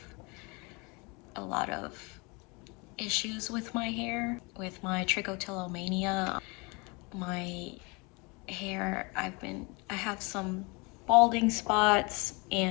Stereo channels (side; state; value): right; quieter; 28.6 dB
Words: a lot of issues with my hair, with my trichotillomania. My hair, I have some balding spots